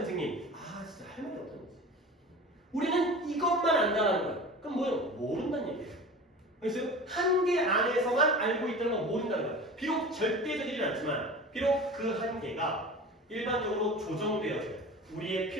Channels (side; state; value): both; normal; correlation 0.36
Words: 진짜 할 말이 없다는 거지. 우리는 이것만 안다는 거야. 그럼 뭐예요? 모른다는 얘기예요. 그래서 한계 안에서만 알고 있다는 건 모른다는 거야. 비록 절대적이진 않지만, 비록 그 한계가 일반적으로 조정되어져요. 우리의